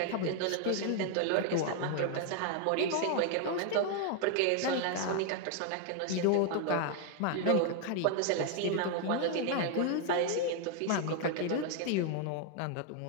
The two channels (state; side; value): different; both; correlation 0.00